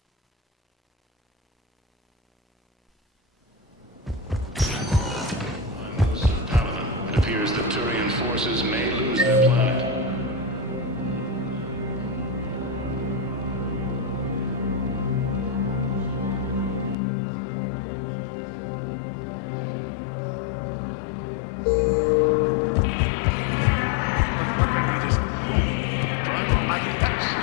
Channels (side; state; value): right; drops out; at 16.9 s